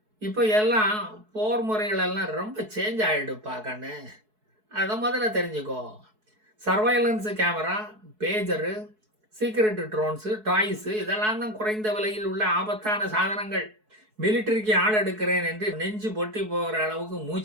இப்போ எல்லாம் போர் முறைகளெல்லாம் ரொம்ப சேஞ்ச் ஆகிடுப்பா கண்ணு, அதை முதல்ல தெரிஞ்சுக்கோ. சர்வைலன்ஸு கேமரா, பேஜரு, சீக்ரெட் ட்ரோன்ஸு, டாய்ஸு இதெல்லாம் தான் குறைந்த விலையில் உள்ள ஆபத்தான சாதனங்கள். மிலிட்டரிக்கு ஆள் எடுக்கிறேன் என்று நெஞ்சு பொட்டி போகிற அளவுக்கு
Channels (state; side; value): late; left; 4.7 ms